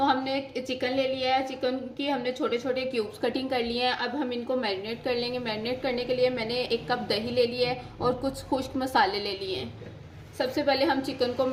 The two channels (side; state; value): both; identical; correlation 1.00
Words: हमने चिकन ले लिया है, चिकन की हमने छोटे छोटे क्यूब्स कटिंग कर लिए हैं। अब हम इनको मैरिनेट कर लेंगे। मैरिनेट करने के लिए मैंने 1 कप दही ले लिया है और कुछ खुश्क मसाले ले लिए हैं। सबसे पहले हम चिकन को